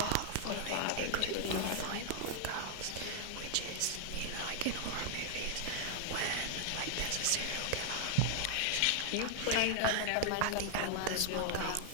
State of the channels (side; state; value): both; different; correlation -0.01